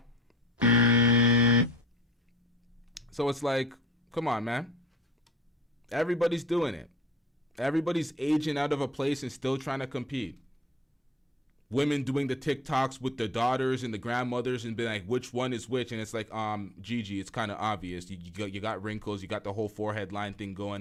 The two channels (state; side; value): normal; both; correlation 0.49